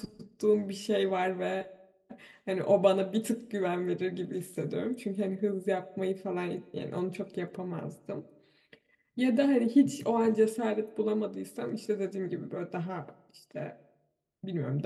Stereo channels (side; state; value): both; identical; correlation 1.00